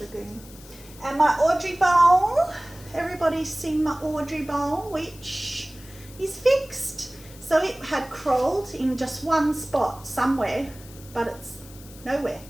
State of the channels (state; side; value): noise; left; hiss, 20 dB below the sound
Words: lagoon. And my Audrey bowl. Everybody's seen my Audrey bowl, which is fixed. So it had crawled in just one spot somewhere, but it's nowhere.